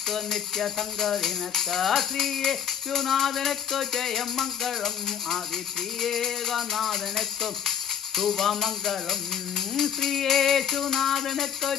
നിത്യ സംഗീതനക്ക് ശ്രീയേശുനാഥനക്ക് ജയമംഗളം ആദി ശ്രീയേകനാഥനക്ക് ശുഭമംഗളം ശ്രീയേശുനാഥനക്ക്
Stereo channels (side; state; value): right; quieter; 8.7 dB